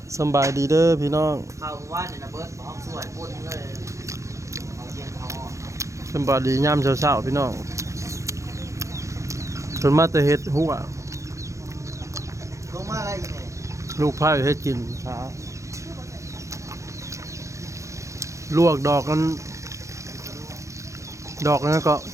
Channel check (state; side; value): late; left; 0.15 ms